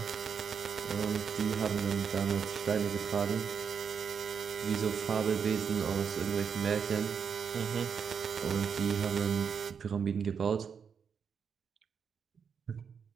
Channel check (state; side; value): quieter; left; 6.7 dB